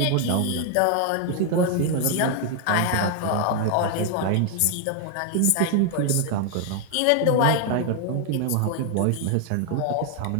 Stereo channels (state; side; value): different; both; correlation 0.00